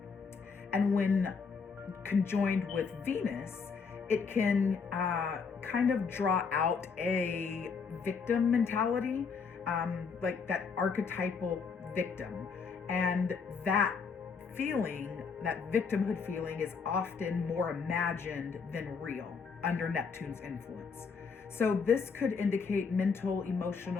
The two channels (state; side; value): quieter; right; 5.5 dB